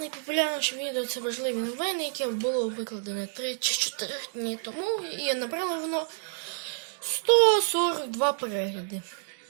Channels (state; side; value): silent; left; digital silence